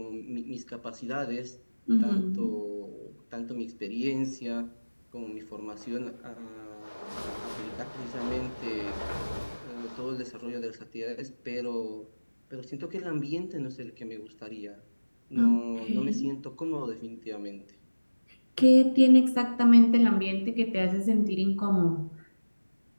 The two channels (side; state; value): both; inverted; correlation -1.00